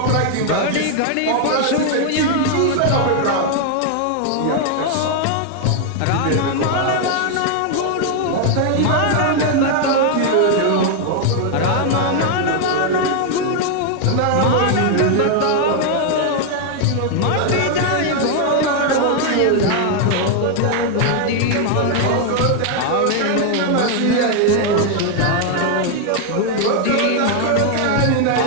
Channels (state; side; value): different; both; correlation 0.00